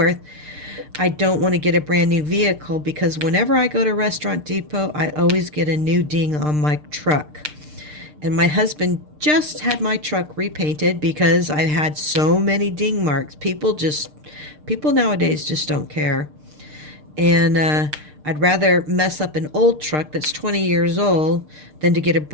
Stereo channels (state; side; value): late; left; 6.6 ms